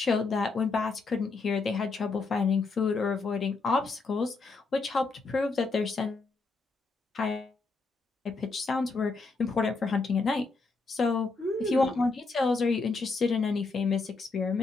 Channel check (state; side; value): quieter; right; 3.9 dB